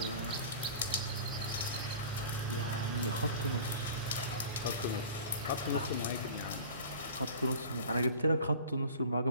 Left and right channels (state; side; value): inverted; both; correlation -0.40